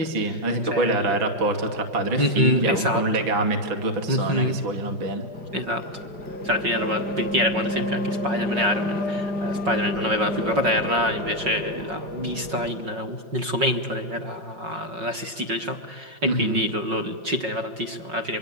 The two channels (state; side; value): late; left; 5.5 ms